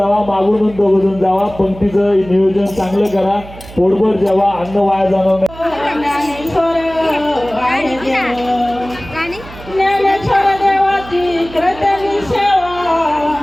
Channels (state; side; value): noise; right; hum, 17 dB below the sound